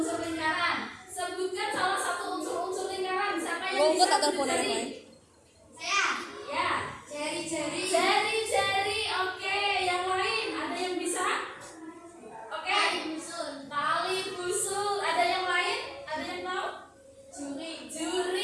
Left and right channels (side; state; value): both; identical; correlation 1.00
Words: lingkaran. Sebutkan salah satu unsur-unsur lingkaran. Siapa yang bisa berdiri? Saya. Ya. Jari-jari. Jari-jari. Oke, yang lain ada yang bisa? Oke. Tali busul. Tali busul. Ada yang lain? Ada yang tahu? Juring.